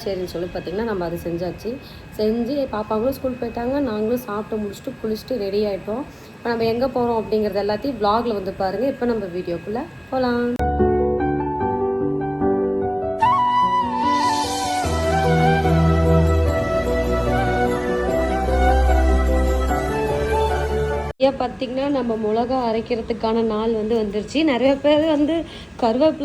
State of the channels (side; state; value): both; identical; correlation 1.00